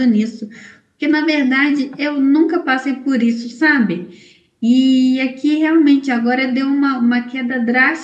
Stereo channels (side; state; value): both; identical; correlation 1.00